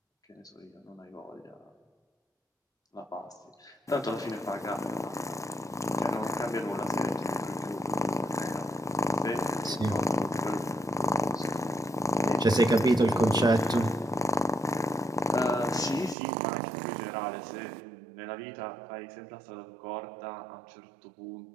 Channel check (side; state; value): left; drops out; at 16.2 s